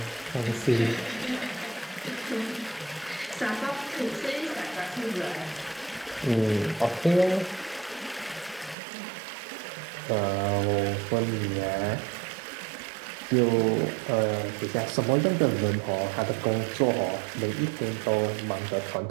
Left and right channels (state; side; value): drops out; left; at 8.8 s